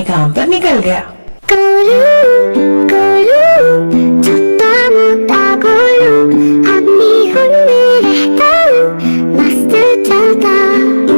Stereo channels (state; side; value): inverted; both; correlation -1.00